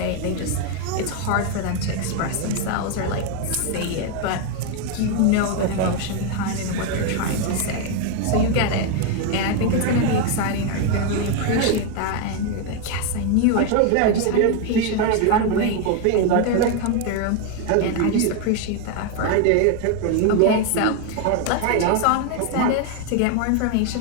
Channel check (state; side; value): different; both; correlation 0.01